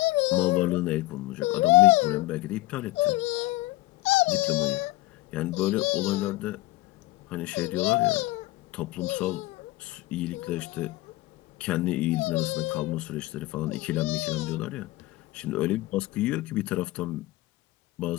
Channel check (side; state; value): right; quieter; 18.6 dB